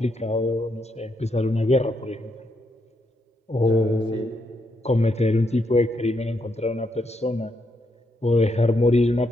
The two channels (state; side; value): normal; both; correlation 0.78